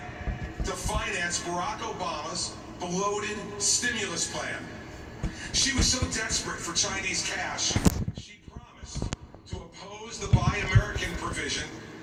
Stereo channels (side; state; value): both; identical; correlation 1.00